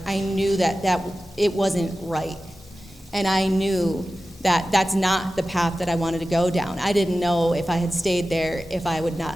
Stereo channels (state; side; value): normal; both; correlation 0.95